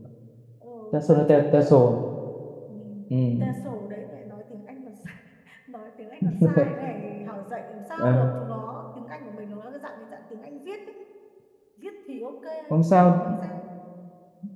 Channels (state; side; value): identical; both; correlation 1.00